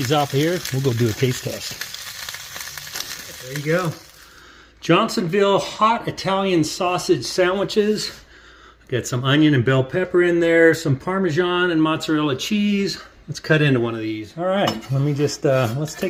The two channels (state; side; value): identical; both; correlation 1.00